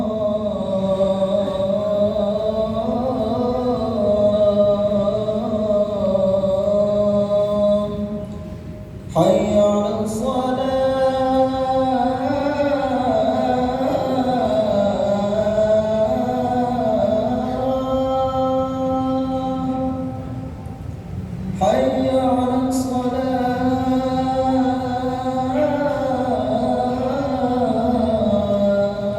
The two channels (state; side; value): identical; both; correlation 1.00